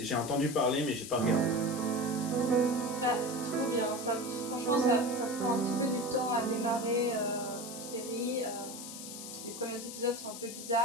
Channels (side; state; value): left; noise; hiss, 10 dB below the sound